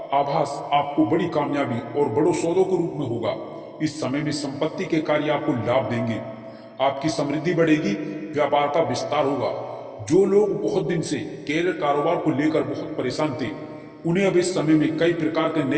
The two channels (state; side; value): identical; both; correlation 1.00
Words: आभास आपको बड़ी कामयाबी और बड़ों सौदों के रूप में होगा। इस समय में संपत्ति के कार्य आपको लाभ देंगे। आपकी समृद्धि बढ़ेगी, व्यापार का विस्तार होगा। जो लोग बहुत दिन से कैरियर कारोबार को लेकर बहुत परेशान थे, उन्हें अब इस समय में कई प्रकार के